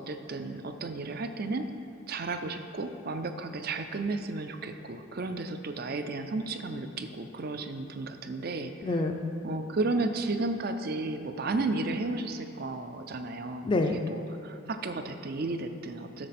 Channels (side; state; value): both; normal; correlation 0.45